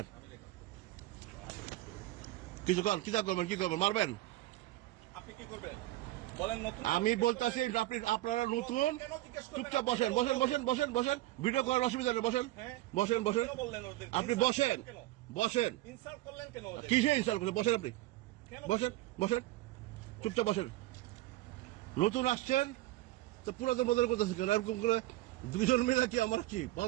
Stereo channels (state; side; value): quieter; left; 17.2 dB